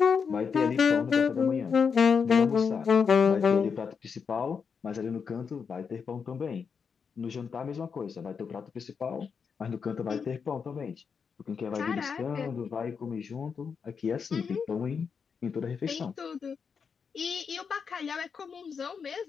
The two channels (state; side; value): quieter; right; 6.1 dB